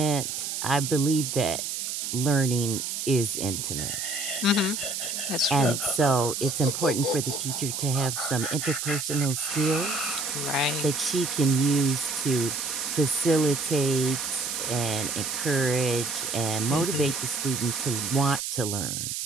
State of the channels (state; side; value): noise; right; hiss, 3 dB below the sound